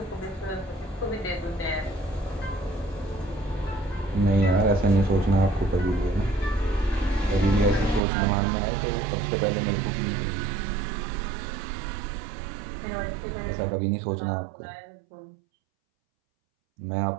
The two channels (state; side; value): drops out; left; at 8.0 s